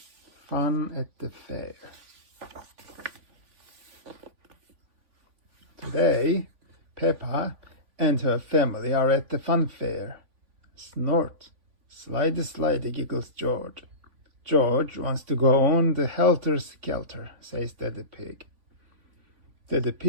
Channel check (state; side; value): late; left; 3.5 ms